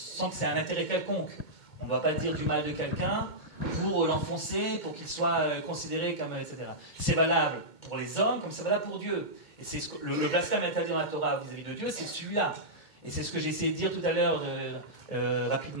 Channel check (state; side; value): late; right; 2.3 ms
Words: c'est un intérêt quelconque. On ne doit pas dire du mal de quelqu'un pour l'enfoncer, pour qu'il soit considéré comme... etc. C'est valable pour les hommes comme c'est valable pour Dieu. Et c'est le blasphème interdit dans la Torah vis-à-vis de Dieu, c'est celui-là. Et c'est ce que j'ai essayé de dire tout à l'heure